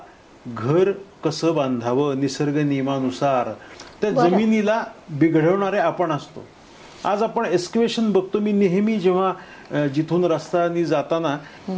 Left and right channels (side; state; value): both; identical; correlation 1.00